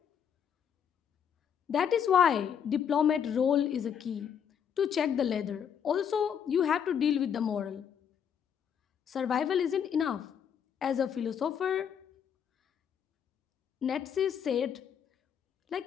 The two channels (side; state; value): right; quieter; 8.1 dB